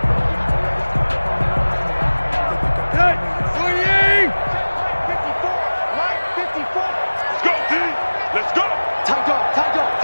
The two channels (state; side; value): inverted; both; correlation -1.00